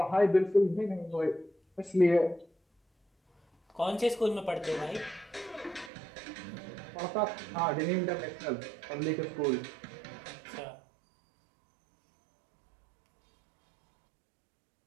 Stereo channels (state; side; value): drops out; left; at 5.9 s